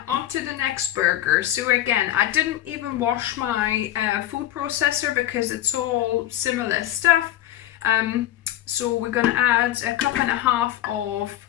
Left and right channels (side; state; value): right; quieter; 13.4 dB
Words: on to the next burger. So again, I didn't even wash my food processor because it's all similar stuff. So we're gonna add a cup and a half of